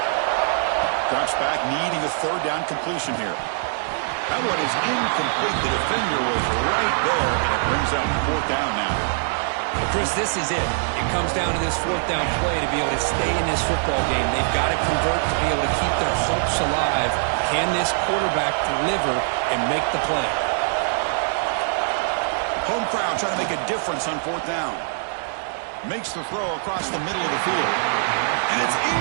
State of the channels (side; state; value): left; silent; digital silence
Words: Drops back, needing a third down completion here. That one is incomplete. The defender was right there, and it brings up fourth down now. Well, Chris, this is it. It comes down to this fourth down play to be able to stay in this football game. They've got to convert to be able to keep their hopes alive. Can this quarterback deliver and make the play? Home crowd trying to make a difference on fourth down. Makes the throw across the middle of the field. And it's